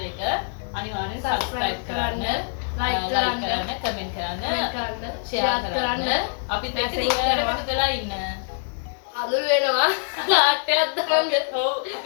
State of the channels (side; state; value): right; silent; 59 dB below the other